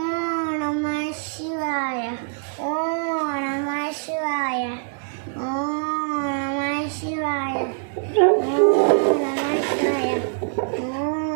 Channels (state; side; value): silent; left; digital silence